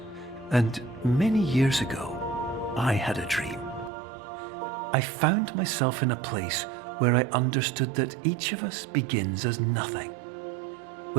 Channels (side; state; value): left; drops out; at 3.9 s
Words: and many years ago, I had a dream. I found myself in a place where I understood that each of us begins as nothing,